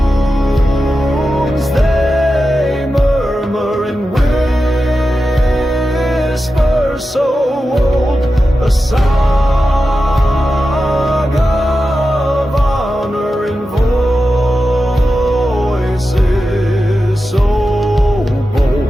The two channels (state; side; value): normal; both; correlation 0.91